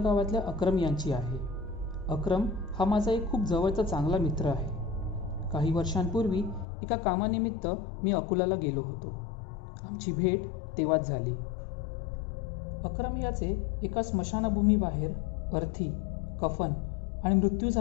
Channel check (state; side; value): drops out; right; at 6.7 s